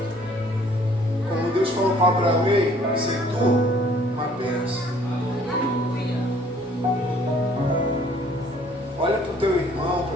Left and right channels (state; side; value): normal; both; correlation 0.58